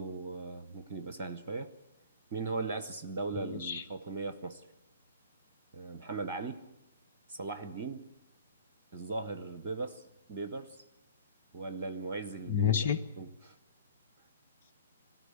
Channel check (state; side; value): inverted; both; correlation -0.40